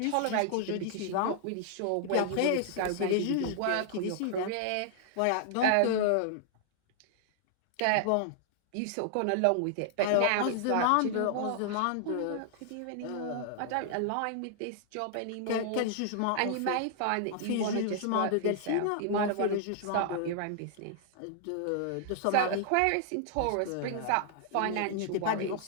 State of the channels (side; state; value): both; different; correlation -0.01